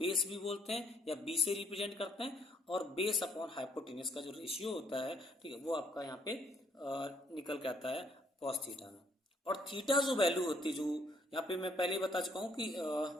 भी बोलते हैं या बी से रिप्रेजेंट करते हैं, और बेस अपॉन हाइपोटेनस का जो रेशियो होता है, ठीक है, वो आपका यहाँ पे निकल के आता है कॉस थीटा में। और थीटा जो वैल्यू होती है, जो यहाँ पे मैं पहले ही बता चुका हूँ कि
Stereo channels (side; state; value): both; normal; correlation 0.68